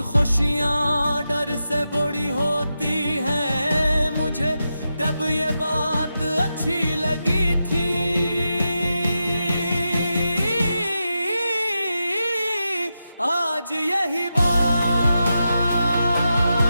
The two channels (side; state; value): both; inverted; correlation -0.88